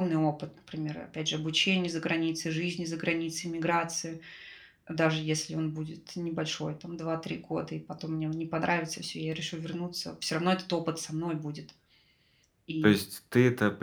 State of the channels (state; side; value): identical; both; correlation 1.00